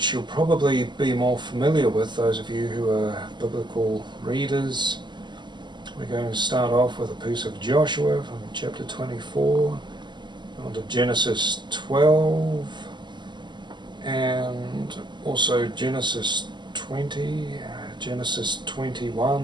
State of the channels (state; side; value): late; left; 0.22 ms